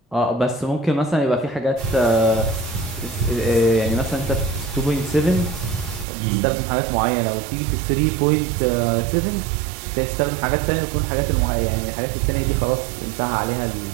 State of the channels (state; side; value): drops out; left; at 6.1 s